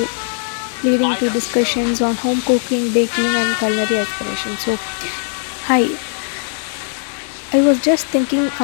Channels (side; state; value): right; silent; digital silence